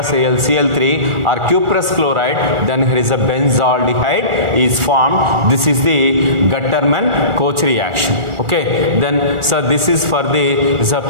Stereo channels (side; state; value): left; late; 2.3 ms